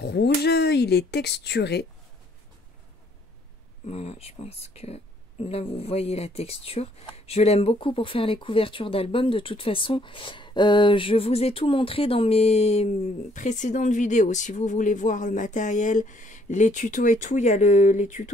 rouge, il est texturé. Voilà, je pense que là vous voyez la texture. Je l'aime beaucoup pour faire les couvertures d'albums. De toute façon, je vous ai tout montré dans mes précédentes vidéos. Si vous voulez voir le matériel, les tutos et tout, il y a les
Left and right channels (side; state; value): both; normal; correlation 0.66